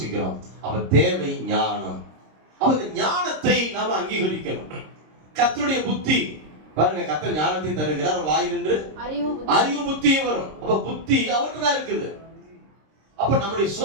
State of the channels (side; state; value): left; late; 26 ms